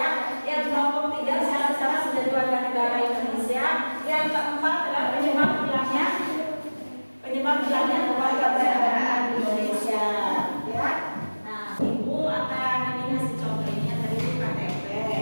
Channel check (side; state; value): both; inverted; correlation -1.00